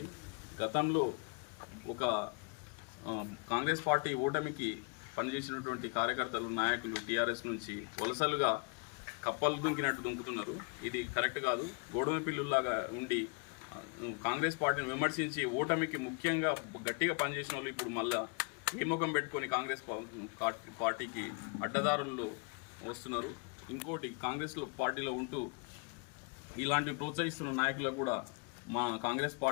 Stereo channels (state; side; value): quieter; right; 36.1 dB